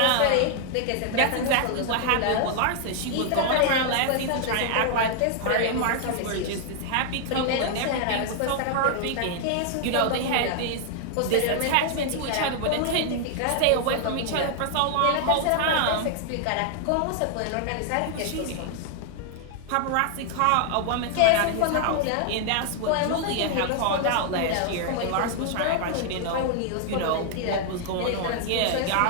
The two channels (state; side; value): different; both; correlation 0.00